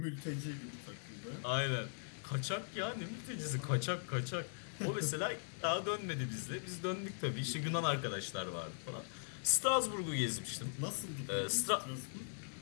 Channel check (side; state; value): right; silent; 51 dB below the other